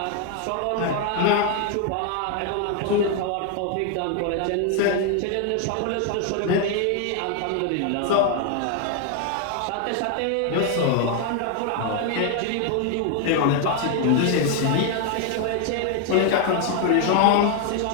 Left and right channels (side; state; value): both; different; correlation 0.00